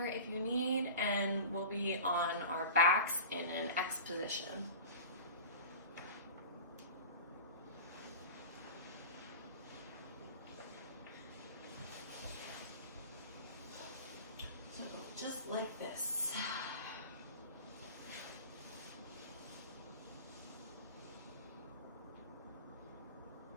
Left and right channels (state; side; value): inverted; both; correlation -0.35